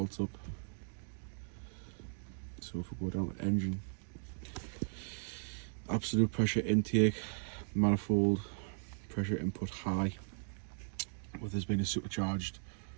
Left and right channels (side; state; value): left; silent; digital silence